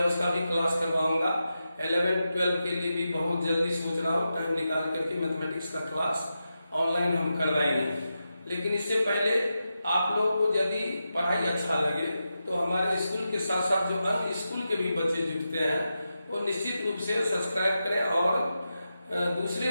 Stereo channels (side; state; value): both; inverted; correlation -0.89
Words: उसका भी क्लास करवाऊंगा। 11-12 के लिए भी बहुत जल्दी सोच रहा हूँ टाइम निकाल करके मैथमेटिक्स का क्लास ऑनलाइन हम करवाएंगे। लेकिन इससे पहले आप लोग को यदि पढ़ाई अच्छा लगे तो हमारे स्कूल के साथ साथ जो अन्य स्कूल के भी बच्चे जुड़ते हैं वो निश्चित रूप से सब्सक्राइब करें और दूसरे